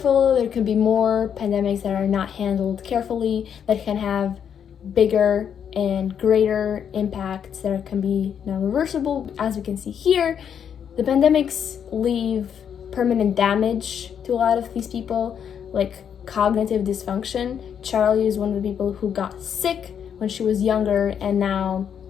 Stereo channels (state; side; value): quieter; right; 8.2 dB